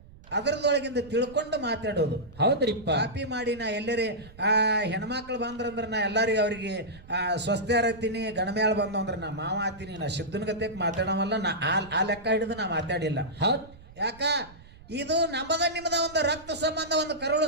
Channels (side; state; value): right; noise; rumble, 21 dB below the sound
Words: ಅದರದೊಳಗಿಂದ ತಿಳ್ಕೊಂಡು ಮಾತಾಡೋದು ಹೌದ್ರಿಪ್ಪ ಕಾಪಿ ಮಾಡಿ ನಾ ಎಲ್ಲರೇ ಹೆಣ್ಮಕ್ಳು ಬಂದ್ರಂದ್ರ ನಾ ಎಲ್ಲರಿಗೂ ಅವ್ರಿಗೆ ಸ್ವಸ್ಥ್ಯಾರ ಹತ್ತೀನಿ ಗಣಮೇಳ ಬಂದು ಅಂದ್ರೆ ನಾ ಮಾವ ಹತ್ತೀನಿ ನಾ ಸಿದ್ದನ ಗತೆಕ್ ಮಾತಾಡವಲ್ಲ ನಾ ಆ ಲೆಕ್ಕ ಹಿಡಿದು ನಾ ಮಾತಾಡಿಲ್ಲ ಹೌದ್ ಯಾಕ ಇದು ನಿಮ್ಮದ ಒಂದು ರಕ್ತ ಸಂಬಂಧ ಒಂದು